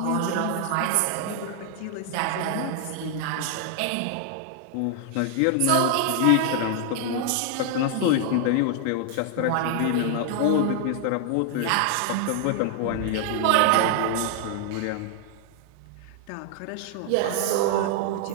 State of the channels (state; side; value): different; both; correlation 0.00